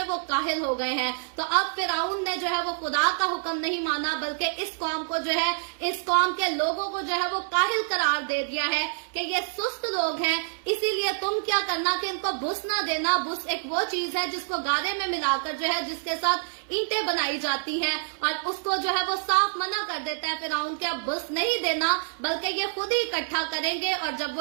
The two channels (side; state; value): left; silent; 60 dB below the other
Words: वो काहिल हो गए हैं। तो अब फिरौन ने जो है वो खुदा का हुक्म नहीं माना, बल्कि इस कौम को जो है, इस कौम के लोगों को जो है वो काहिल करार दे दिया है कि ये सुस्त लोग हैं, इसीलिए तुम क्या करना कि इनको बुस ना देना। बुस एक वो चीज है जिसको गारे में मिलाकर जो है जिसके साथ ईंटें बनाई जाती हैं, और उसको जो है वो साफ मना कर देता है फिरौन के अब बुस नहीं देना, बल्कि ये खुद ही इकट्ठा करेंगे, और जब